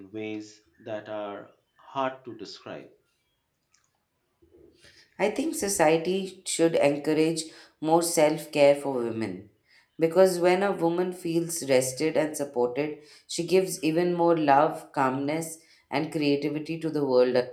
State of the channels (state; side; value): identical; both; correlation 1.00